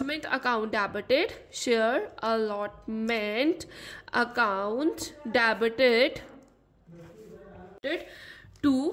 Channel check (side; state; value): both; identical; correlation 1.00